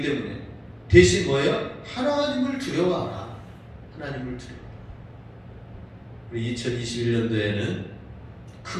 때문에 대신 뭐예요? 하나님을 두려워하라. 하나님을 두려워하라. 우리 2021년도에는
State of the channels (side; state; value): both; identical; correlation 1.00